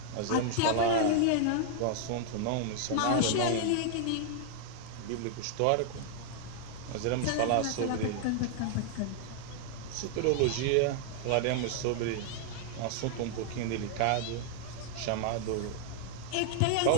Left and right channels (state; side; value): different; both; correlation 0.00